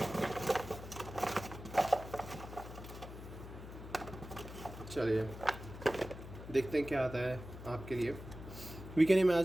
चलिए देखते हैं क्या आता है आपके लिए। We can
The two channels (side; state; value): left; noise; hum, 12 dB below the sound